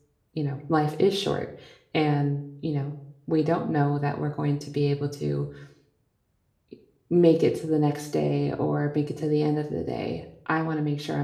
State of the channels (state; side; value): identical; both; correlation 1.00